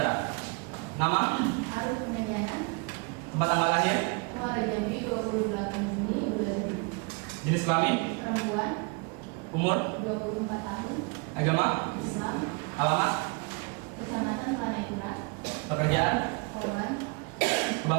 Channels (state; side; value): quieter; left; 32.0 dB